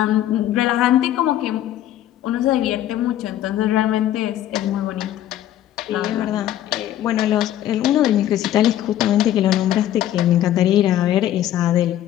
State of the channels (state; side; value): quieter; right; 12.3 dB